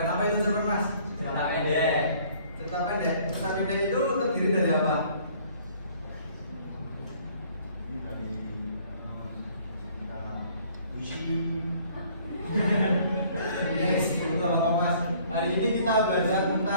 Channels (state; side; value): inverted; both; correlation -0.58